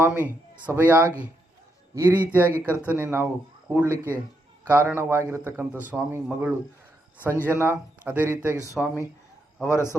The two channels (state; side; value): normal; both; correlation 0.80